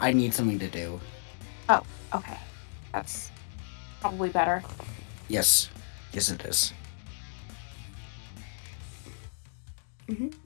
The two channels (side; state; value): right; silent; digital silence